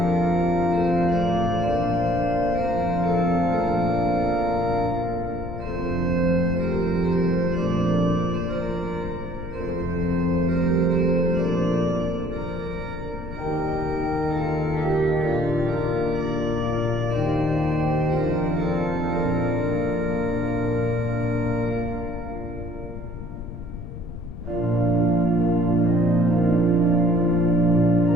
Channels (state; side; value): noise; left; rumble, 10 dB below the sound